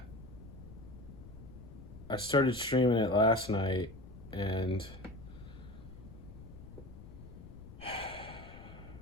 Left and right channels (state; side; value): noise; left; rumble, 15 dB below the sound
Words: I started streaming it last night, and